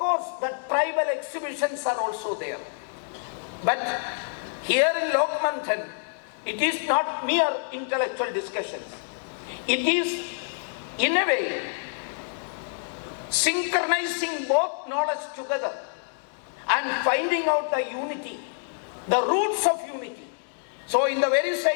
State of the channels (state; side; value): silent; right; digital silence